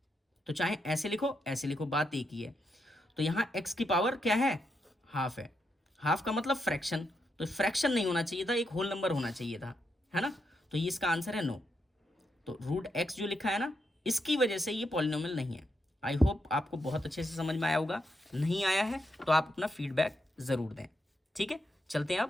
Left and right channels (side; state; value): both; normal; correlation 0.82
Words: तो चाहे ऐसे लिखो, बात एक ही है। तो यहाँ x की पावर क्या है, हाफ है, हाफ का मतलब फ्रैक्शन, तो फ्रैक्शन नहीं होना चाहिए था, एक होल नंबर होना चाहिए था, है ना, तो ये इसका आंसर है नो। तो √x जो लिखा है ना, इसकी वजह से ये पॉलिनोमियल नहीं है। आई होप आपको बहुत अच्छे से समझ में आया होगा, नहीं आया है तो आप अपना फीडबैक ज़रूर दें, ठीक है। चलते हैं